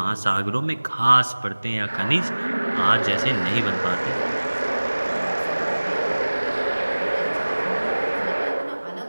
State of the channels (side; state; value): both; inverted; correlation -1.00